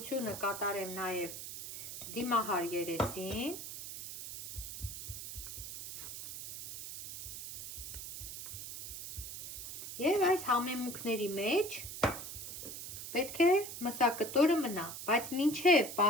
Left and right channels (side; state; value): right; noise; hiss, 9 dB below the sound